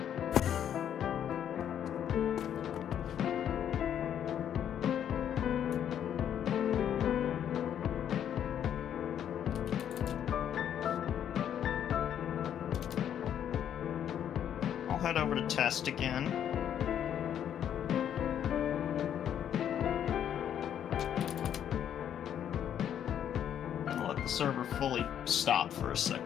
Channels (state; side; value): quieter; right; 9.6 dB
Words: I'll head over to test again. Server fully stop for a